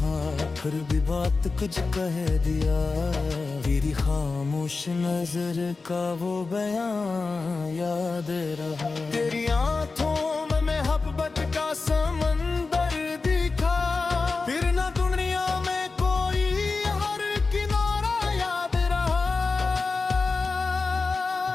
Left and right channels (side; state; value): right; quieter; 4.1 dB